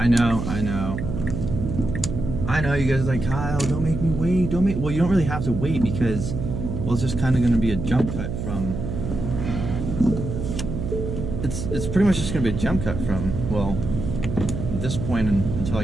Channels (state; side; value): noise; right; hum, 4 dB below the sound